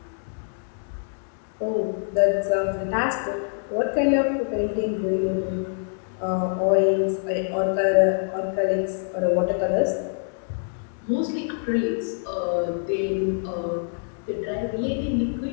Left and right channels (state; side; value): silent; right; digital silence